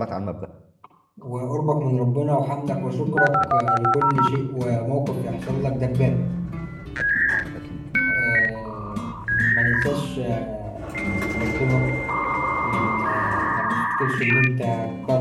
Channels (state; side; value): identical; both; correlation 1.00